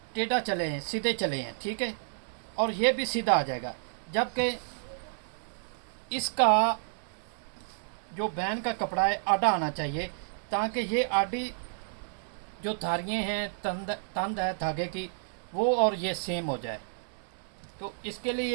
टेढ़ा चले हैं, सीधे चले हैं, ठीक है। और ये भी सीधा आ जाएगा, जबकि इसका जो बैन का कपड़ा है आड़ा आना चाहिए, ताकि ये आड़ी जो धारियाँ हैं, तंद है धागे की, वो और ये सेम हो जाए। तो इसके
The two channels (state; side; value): silent; left; digital silence